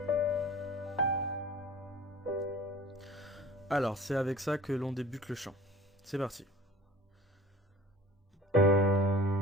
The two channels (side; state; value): both; normal; correlation 0.43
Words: Alors, c'est avec ça que l'on débute le chant. C'est parti.